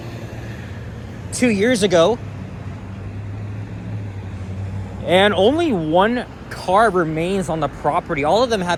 2 years ago. And only one car remains on the property. All of them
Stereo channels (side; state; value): both; identical; correlation 1.00